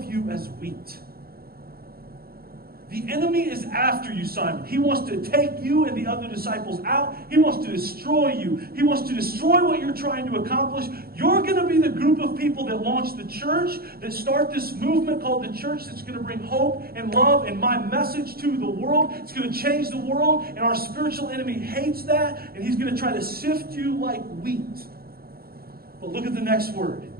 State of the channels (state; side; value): late; left; 0.44 ms